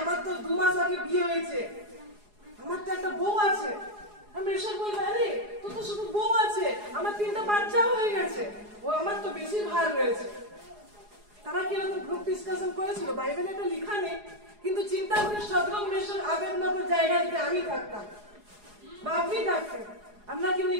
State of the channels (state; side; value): late; left; 4.8 ms